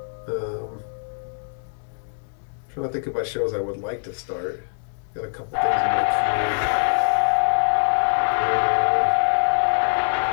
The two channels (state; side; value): silent; right; digital silence